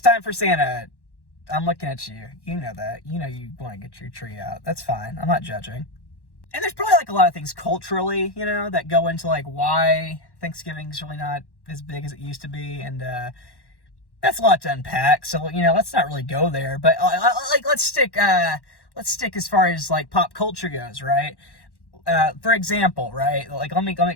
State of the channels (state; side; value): late; right; 1.1 ms